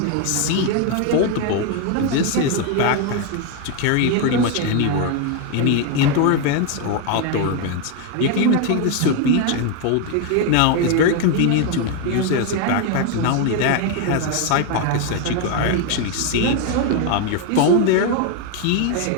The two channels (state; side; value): different; both; correlation 0.01